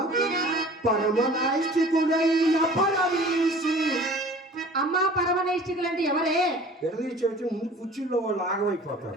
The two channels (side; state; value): both; normal; correlation 0.45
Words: పరమనైష్టికుడైన పరమేశి. అమ్మా పరమనైష్టికులు అంటే ఎవరే? ఎడదీసి ముందు కుర్చీల్లో వాళ్ళు